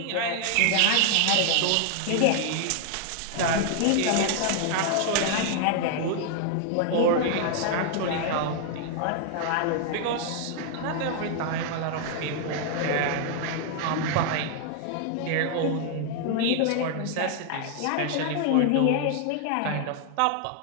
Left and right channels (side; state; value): both; different; correlation 0.00